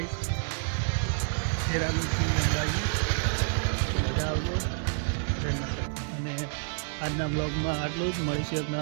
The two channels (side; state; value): left; silent; 59 dB below the other